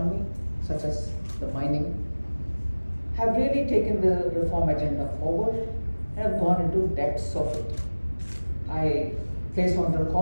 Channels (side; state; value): both; inverted; correlation -1.00